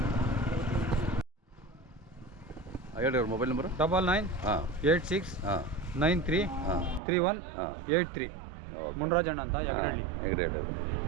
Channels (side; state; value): left; drops out; at 7.0 s